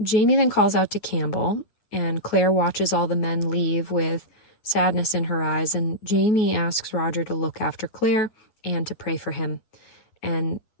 Jamie then calls out to Campbell, and Claire watches all the men leave with sadness in her eyes, and Jamie asks Roger to look after Claire and to pray for him. And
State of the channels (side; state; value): right; late; 9.4 ms